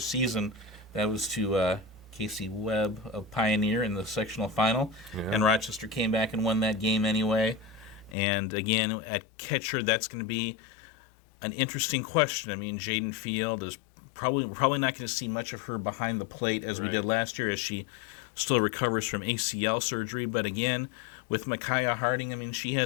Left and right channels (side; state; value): right; drops out; at 8.2 s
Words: That was to Casey Webb of Pioneer in the sectional final. Yeah. And Rochester came back and won that game anyway. And again, at catcher, that's going to be an interesting question. I mean, Jaden Field is Probably not going to see much of her behind the plate as we did last year, as she still recovers from ACL surgery. But again, with Micaiah Harding, I mean, she